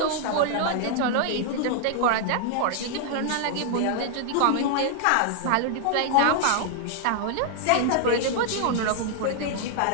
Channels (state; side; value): different; both; correlation 0.00